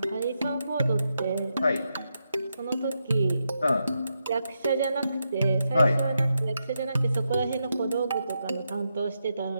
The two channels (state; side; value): inverted; both; correlation -0.84